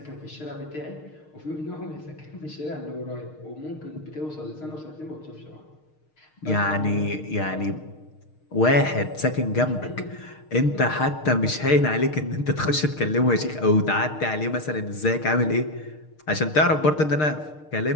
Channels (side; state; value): right; late; 6.5 ms